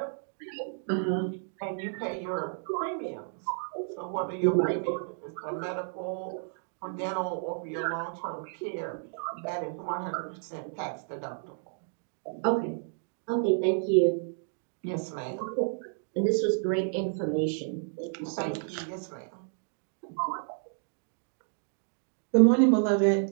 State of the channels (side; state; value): left; silent; digital silence